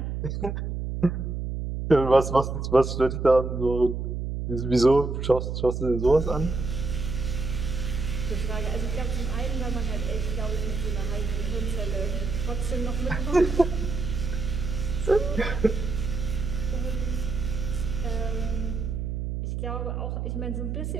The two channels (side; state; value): right; noise; hum, 3 dB below the sound